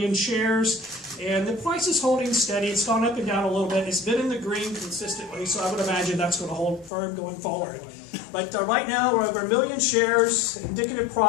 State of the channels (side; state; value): right; drops out; at 6.9 s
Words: shares, and the price is holding steady. It's gone up and down a little bit. It's been in the green consistently, so I would imagine that's going to hold firm going forward. But right now, we're over 1 million shares. Indicative